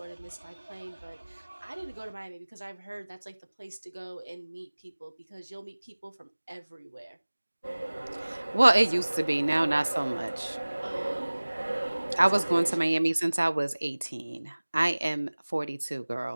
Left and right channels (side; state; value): both; inverted; correlation -1.00